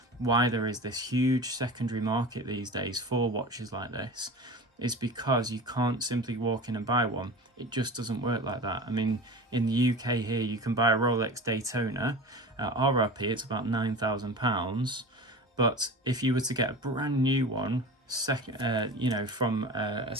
why there is this huge secondary market these days for watches like this is because you can't simply walk in and buy one. It just doesn't work like that. I mean, in the UK here, you can buy a Rolex Daytona. RRP, it's about £9,000. But if you were to get a brand new one, you know, from a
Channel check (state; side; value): normal; both; correlation 0.33